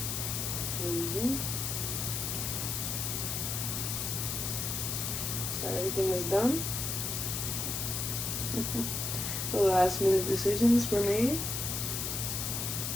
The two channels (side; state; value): left; noise; hiss, 2 dB below the sound